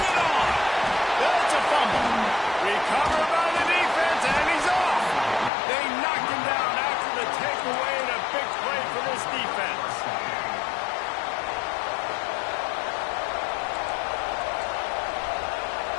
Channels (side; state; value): right; drops out; at 5.5 s